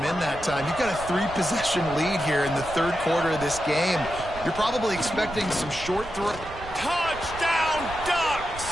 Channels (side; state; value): right; noise; rumble, 14 dB below the sound